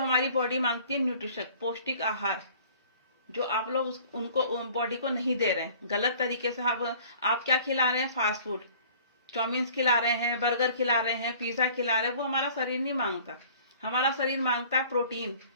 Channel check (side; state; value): both; inverted; correlation -0.51